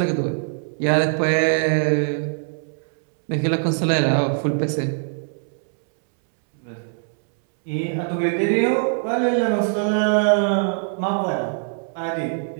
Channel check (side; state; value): left; silent; 64 dB below the other